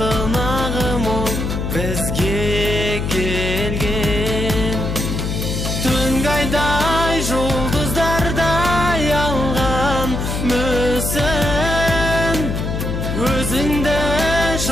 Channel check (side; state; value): left; noise; hum, 2 dB below the sound